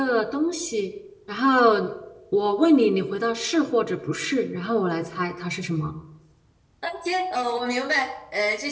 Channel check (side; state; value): both; identical; correlation 1.00